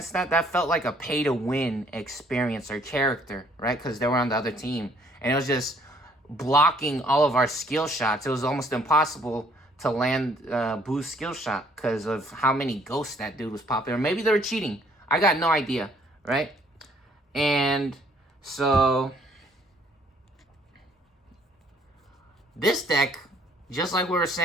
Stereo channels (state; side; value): normal; both; correlation 0.62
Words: that felt like a pay-to-win experience or character, right? Because they were on the other team. And it was just blocking all of our skill shots. It was almost impossible to land Boo's skill shot because of how many ghosts that dude was popping. Or maybe they were cheating. I got no idea, right? And so this deck, just like we were